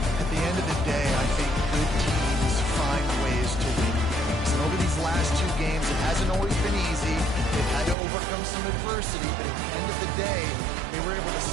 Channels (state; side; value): drops out; left; at 8.0 s